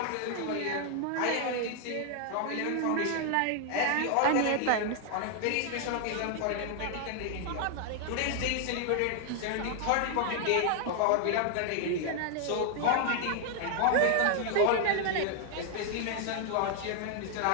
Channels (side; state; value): both; different; correlation 0.00